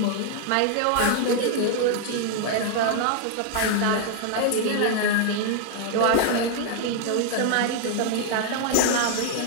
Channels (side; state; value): both; different; correlation 0.00